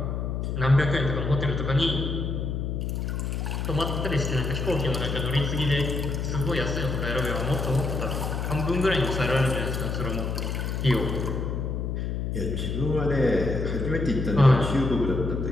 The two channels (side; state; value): left; noise; hum, 2 dB below the sound